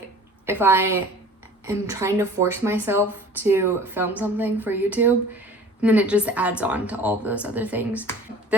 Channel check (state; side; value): normal; both; correlation 0.45